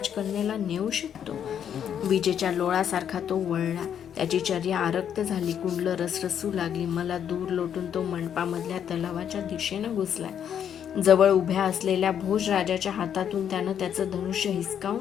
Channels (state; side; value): quieter; right; 8.8 dB